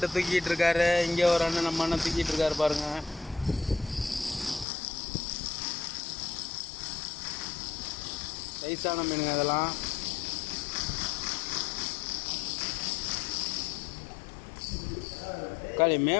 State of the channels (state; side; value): drops out; right; at 4.7 s